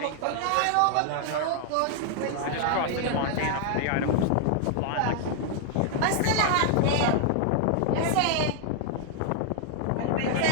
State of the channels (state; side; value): different; both; correlation 0.00